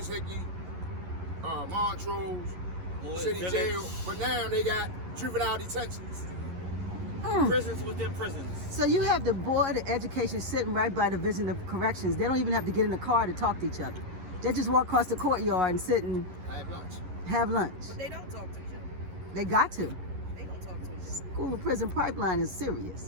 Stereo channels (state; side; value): late; left; 11 ms